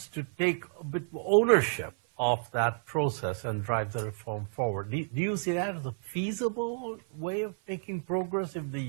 to take a bit of ownership of that process and drive the reform forward? Do you see that as a feasible way of making progress if the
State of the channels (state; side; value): silent; left; 57 dB below the other